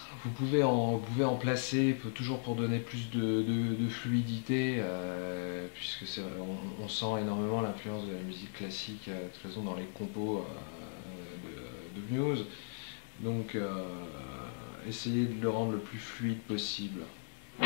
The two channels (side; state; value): right; silent; digital silence